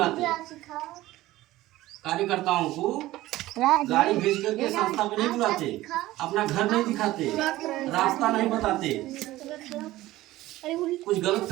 कार्यकर्ताओं को गाड़ी भेज करके संस्था में नहीं बुलाते, अपना घर नहीं दिखाते, रास्ता नहीं बताते। कुछ गलत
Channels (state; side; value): quieter; left; 16.7 dB